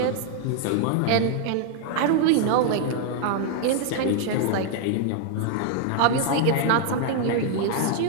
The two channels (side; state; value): both; different; correlation 0.00